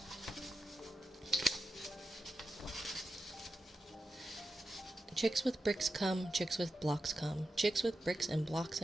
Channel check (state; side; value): normal; both; correlation 0.90